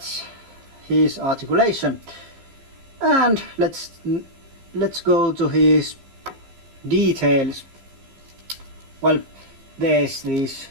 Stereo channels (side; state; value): left; late; 15 ms